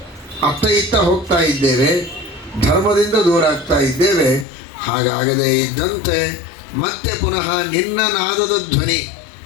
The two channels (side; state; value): right; drops out; at 4.5 s